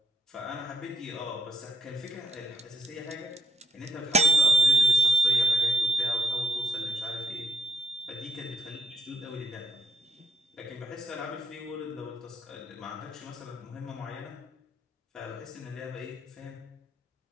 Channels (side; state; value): both; normal; correlation 0.77